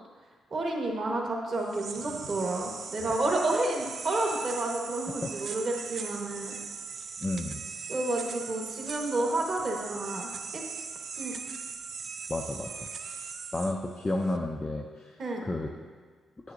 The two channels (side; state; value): both; normal; correlation 0.83